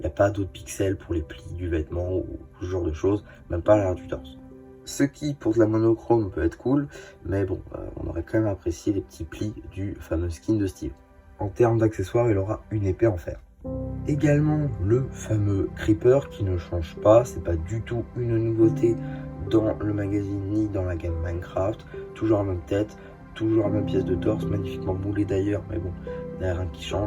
n'y a pas d'autres pixels pour les plis du vêtement ou ce genre de choses, même pas à l'arrière du torse. Ce qui, pour de la monochrome, peut être cool, mais bon, on aurait quand même apprécié les petits plis du fameux skin de Steve. En termes d'accessoires, il aura une épée en fer. Également le fameux Creeper qui ne change pas, c'est pas du tout une nouveauté dans le magazine ni dans la gamme Minecraft. Toujours la même tête, toujours la même pièce de torse, magnifiquement moulée d'ailleurs, mais bon, il n'y a rien qui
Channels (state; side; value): identical; both; correlation 1.00